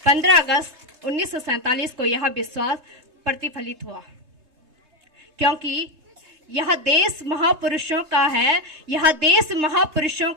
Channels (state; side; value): late; left; 3.3 ms